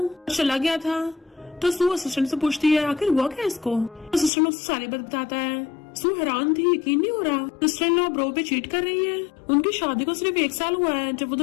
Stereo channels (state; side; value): drops out; right; at 4.3 s